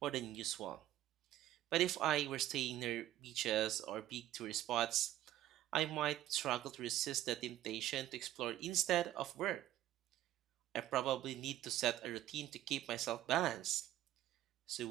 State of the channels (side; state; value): left; quieter; 13.5 dB